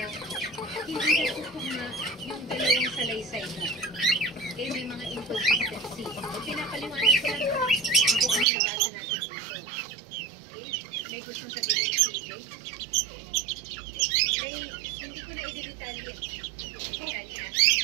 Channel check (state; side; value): drops out; left; at 8.5 s